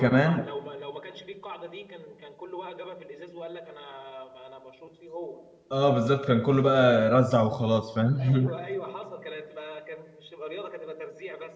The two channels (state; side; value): identical; both; correlation 1.00